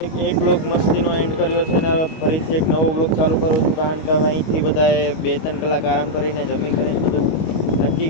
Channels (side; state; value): right; late; 25 ms